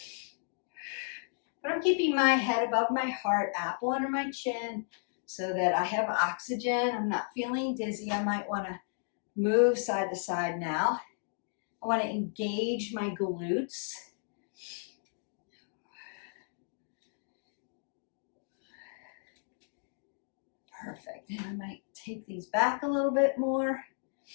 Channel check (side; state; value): right; silent; digital silence